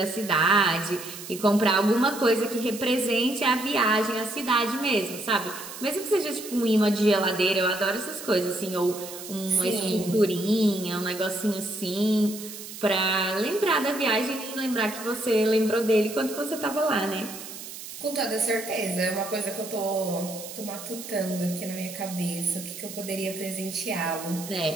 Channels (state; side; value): noise; right; hiss, 12 dB below the sound